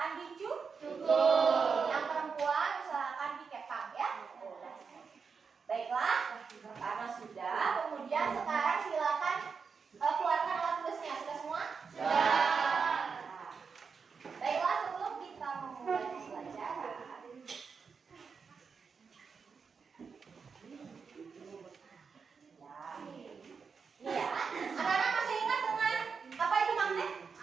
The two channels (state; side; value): quieter; left; 5.6 dB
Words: dicukur. Yang perempuan usahakan dikepang ya. Baiklah, karena sudah, kemudian sekarang silakan keluarkan alat tulisnya. Sudah semua? Sudah. Baiklah, sebelum kita memulai pembelajaran, ya, anak-anak masih ingat dengan apa itu magnet?